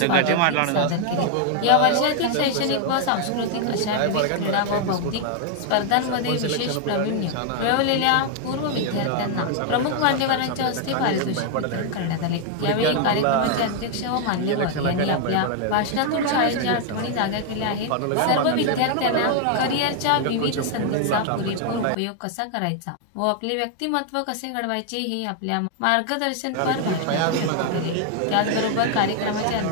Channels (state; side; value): different; both; correlation 0.00